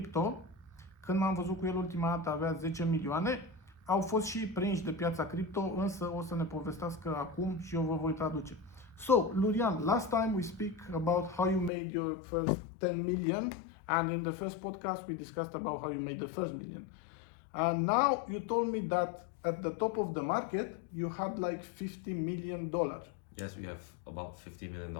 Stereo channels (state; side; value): drops out; right; at 11.7 s